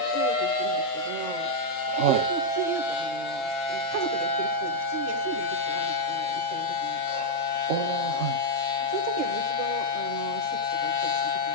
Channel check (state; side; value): late; right; 3.7 ms